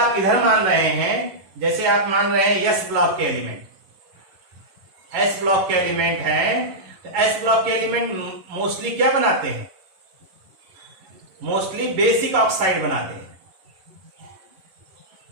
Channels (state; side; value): late; left; 11 ms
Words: इधर मान रहे हैं, जैसे आप मान रहे हैं एस ब्लॉक के एलिमेंट, एस ब्लॉक के एलिमेंट हैं, तो एस ब्लॉक के एलिमेंट मोस्टली क्या बनाते हैं? मोस्टली बेसिक ऑक्साइड बनाते हैं।